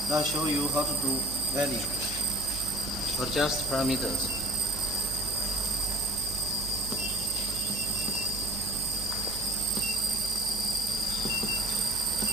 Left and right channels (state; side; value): noise; right; hum, 11 dB below the sound